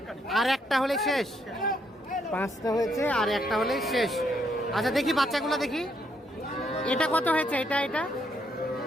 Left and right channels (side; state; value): both; normal; correlation 0.74